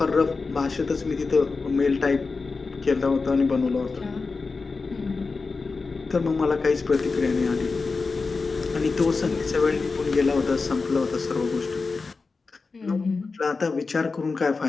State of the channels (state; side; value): quieter; right; 4.2 dB